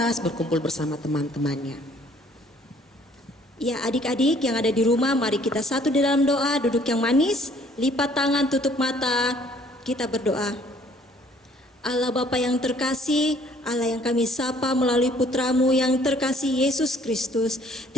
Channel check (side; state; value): both; normal; correlation 0.59